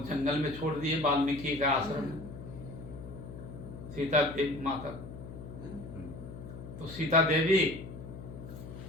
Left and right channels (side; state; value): left; noise; hum, 11 dB below the sound